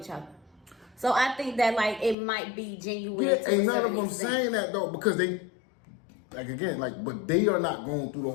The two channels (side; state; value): right; drops out; at 2.1 s